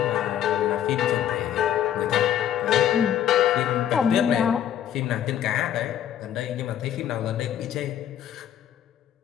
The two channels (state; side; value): quieter; right; 10.4 dB